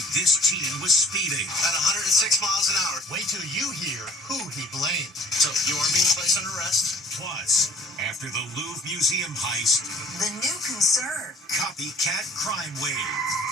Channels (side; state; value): both; normal; correlation 0.53